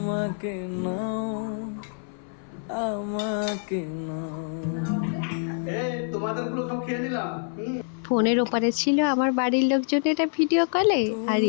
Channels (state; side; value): silent; right; 58 dB below the other